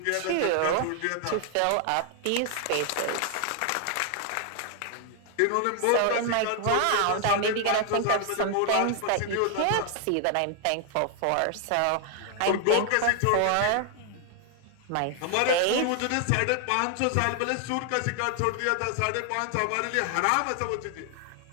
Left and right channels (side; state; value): both; different; correlation 0.00